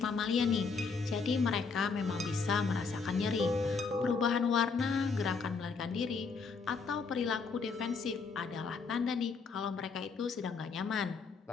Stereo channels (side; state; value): right; quieter; 4.9 dB